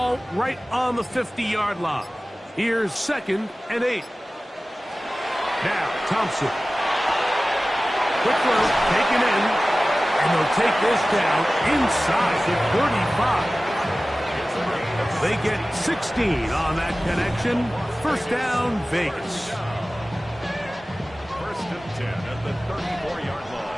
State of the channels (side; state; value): both; normal; correlation 0.97